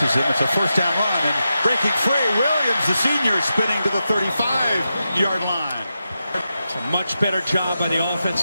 him. It's a first down run, and breaking free, Williams, the senior, spinning to the 35-yard line. It's a much better job by the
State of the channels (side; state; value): both; inverted; correlation -0.89